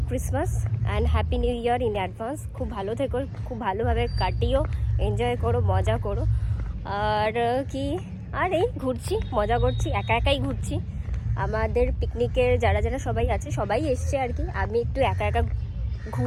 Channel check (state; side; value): identical; both; correlation 1.00